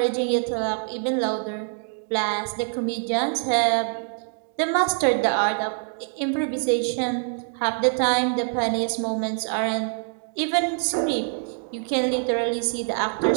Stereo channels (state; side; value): silent; left; 58 dB below the other